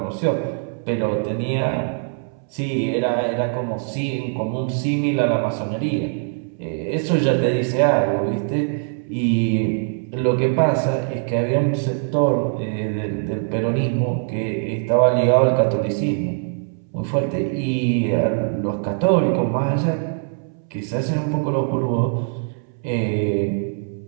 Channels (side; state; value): left; silent; 64 dB below the other